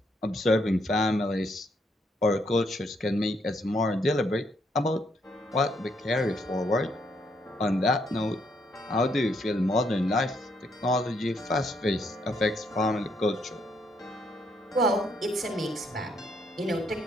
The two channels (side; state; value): both; normal; correlation 0.73